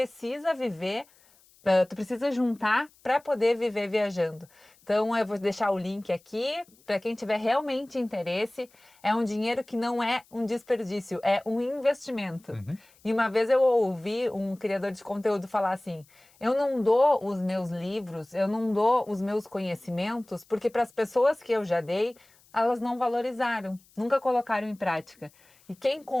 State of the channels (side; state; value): left; noise; hiss, 30 dB below the sound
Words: viver, tu precisa juntar para poder viver viajando. Então eu vou deixar o link aqui para quem tiver realmente interesse. É um dinheiro que não é um desperdício, é um investimento. E uma vez eu ouvi um criador de conteúdo falar assim: eu não dou os meus livros, eu não dou os meus conhecimentos, porque para as pessoas que eu já dei, elas não valorizaram, nunca colocaram em prática. E quem